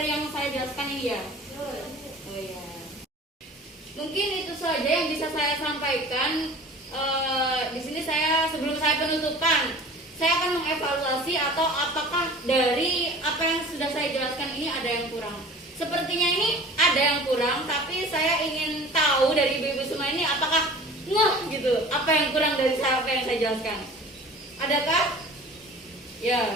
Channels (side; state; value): both; normal; correlation 0.42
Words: yang saya jelaskan ini ya? Oh iya. Mungkin itu saja yang bisa saya sampaikan. Di sini sebelum saya penutupan, saya akan mengevaluasi atau apakah dari apa yang sudah saya jelaskan ini ada yang kurang. Sepertinya ini ada yang kurang, tapi saya ingin tahu dari ibu-ibu semua ini apakah gitu apa yang kurang dari apa yang saya jelaskan. Adakah? Ya,